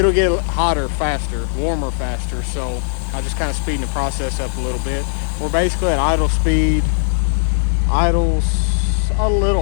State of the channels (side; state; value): right; silent; 57 dB below the other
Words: get hotter faster, warmer faster. So I'm just kind of speeding the process up a little bit. We're basically at idle speed. Idle's a